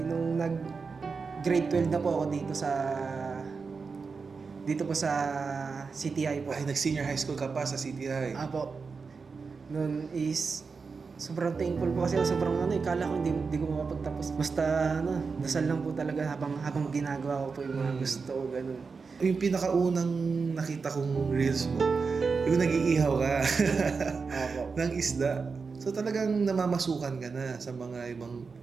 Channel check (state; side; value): quieter; left; 4.9 dB